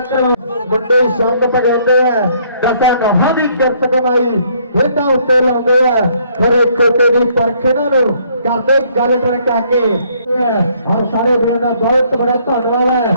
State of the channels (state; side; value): inverted; both; correlation -0.65